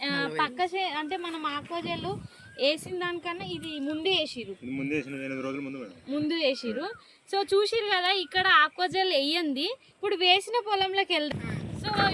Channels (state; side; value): identical; both; correlation 1.00